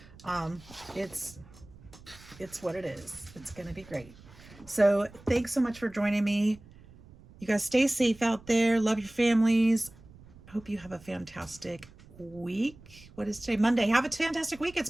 it's what it is. It's going to be great. So thanks so much for joining me. You guys stay safe out there. Love your families. Hope you have a fantastic week. What is today? Monday. Have a fantastic week.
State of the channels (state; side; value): noise; right; rumble, 22 dB below the sound